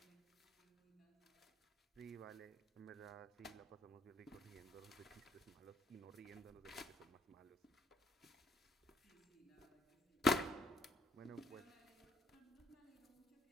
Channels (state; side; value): normal; both; correlation 0.66